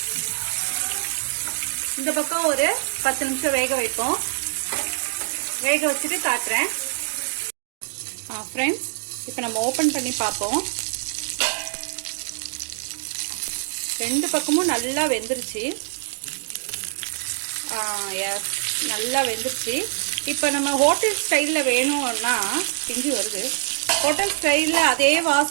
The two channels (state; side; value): silent; left; digital silence